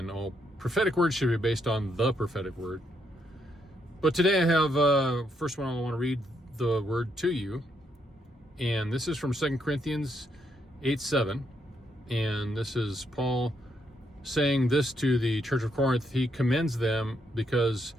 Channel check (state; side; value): normal; both; correlation 0.76